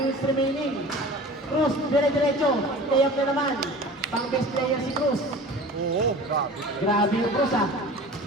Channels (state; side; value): normal; both; correlation 0.39